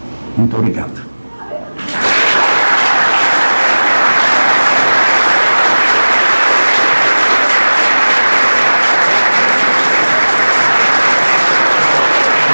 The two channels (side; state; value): both; inverted; correlation -1.00